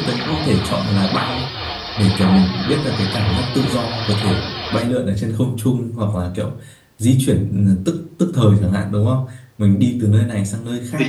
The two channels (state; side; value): identical; both; correlation 1.00